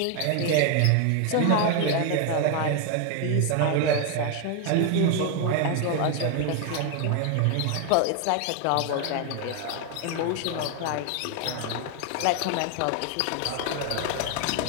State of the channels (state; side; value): different; both; correlation 0.01